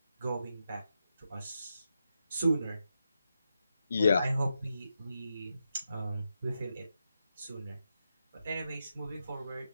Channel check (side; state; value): both; inverted; correlation -0.85